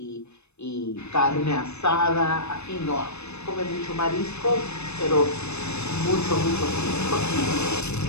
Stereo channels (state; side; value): late; right; 0.81 ms